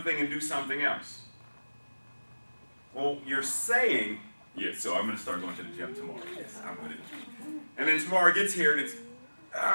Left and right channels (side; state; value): both; inverted; correlation -1.00